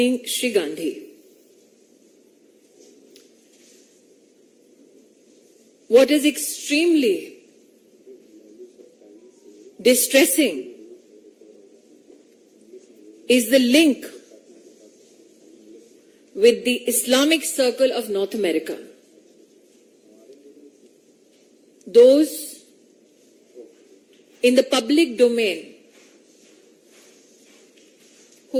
Sri Gandhi. What is extremely distressing is the link with the Islamic Circle of North America. Those in the public domain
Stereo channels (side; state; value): both; identical; correlation 1.00